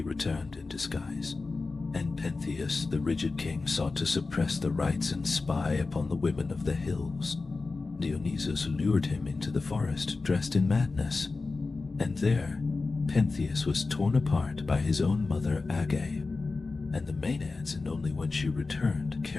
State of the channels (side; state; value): right; quieter; 3.8 dB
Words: returned in disguise, and Pentheus, the rigid king, sought to suppress the rites and spy upon the women of the hills. Dionysus lured him into the forest, dressed in madness, and there Pentheus was torn apart by his own mother Agave, and the maenads, and only when she returned,